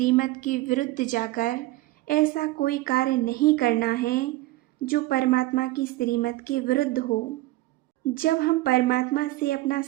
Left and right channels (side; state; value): left; quieter; 18.2 dB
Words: के विरुद्ध जाकर ऐसा कोई कार्य नहीं करना है जो परमात्मा की श्रीमत के विरुद्ध हो। जब हम परमात्मा से अपना